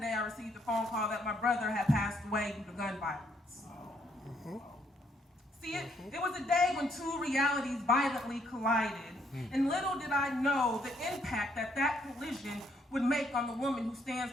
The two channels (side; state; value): both; normal; correlation 0.70